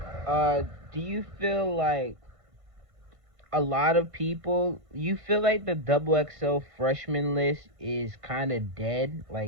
Okay. Do you feel like a lot of people? You feel like the double XL freshman list is kind of dead,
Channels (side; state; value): left; late; 1.5 ms